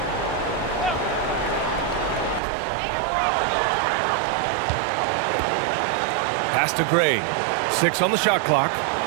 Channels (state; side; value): drops out; left; at 2.4 s